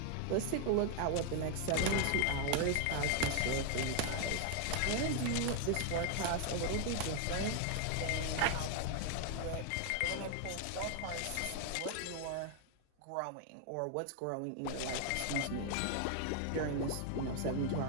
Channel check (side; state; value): both; different; correlation 0.00